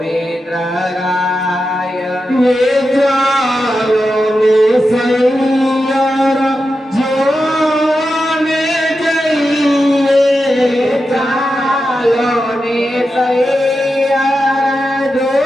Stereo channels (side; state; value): both; normal; correlation 0.89